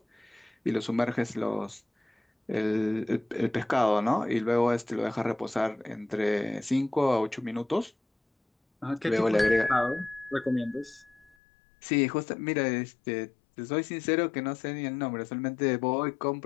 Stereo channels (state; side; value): drops out; right; at 11.4 s